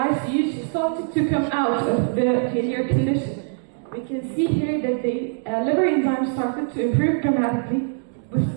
she started to come out of the failure condition. We can see here that the liver enzymes started to improve dramatically with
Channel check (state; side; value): silent; left; digital silence